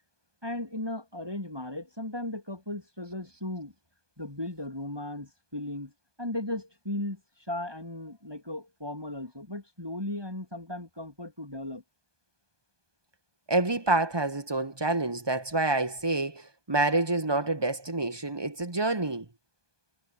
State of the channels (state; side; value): late; left; 1.2 ms